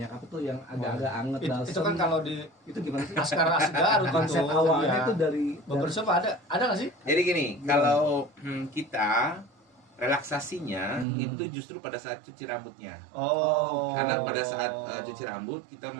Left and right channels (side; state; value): left; drops out; at 11.1 s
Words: apa tuh yang agak-agak anget Itu kan kalau di itu gimana sih? Laskar Garut Konsep itu, awalnya iya. itu dari Barbershop ada nggak sih? Jadi gini, kalau kita relaksasinya itu justru pada saat cuci rambutnya. Oh. Karena pada saat cuci rambut kita